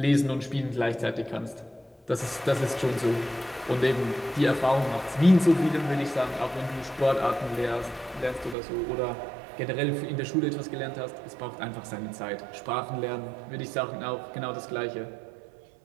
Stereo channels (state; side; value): drops out; left; at 8.6 s